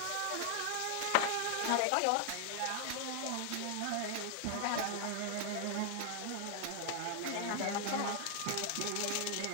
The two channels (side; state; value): both; different; correlation 0.00